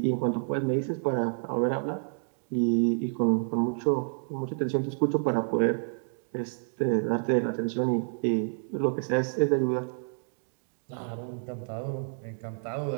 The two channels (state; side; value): silent; left; digital silence